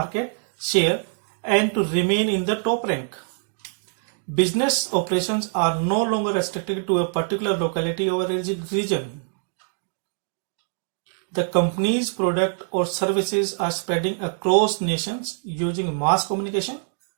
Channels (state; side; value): silent; left; digital silence